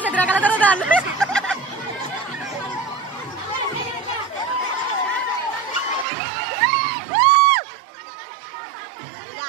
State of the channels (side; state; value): left; drops out; at 6.1 s